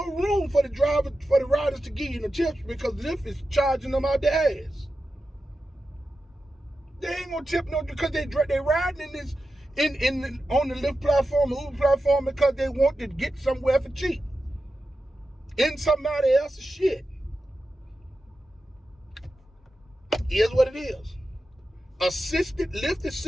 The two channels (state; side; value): normal; both; correlation 0.91